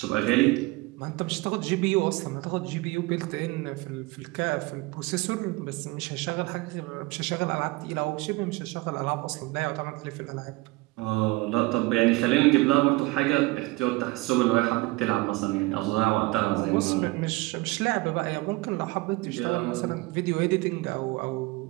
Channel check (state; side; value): quieter; left; 22.3 dB